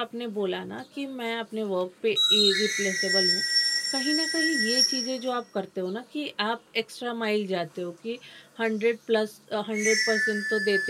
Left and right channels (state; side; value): identical; both; correlation 1.00